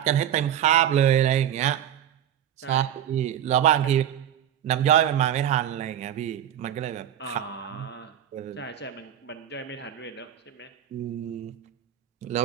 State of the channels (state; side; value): quieter; left; 10.5 dB